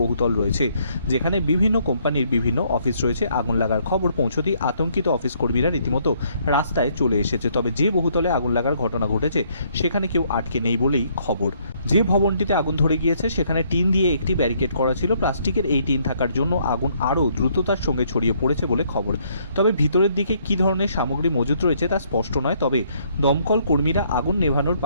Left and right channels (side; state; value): both; inverted; correlation -0.68